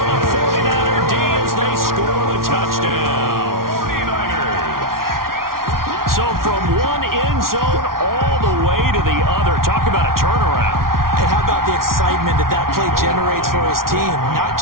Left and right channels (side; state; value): left; late; 0.92 ms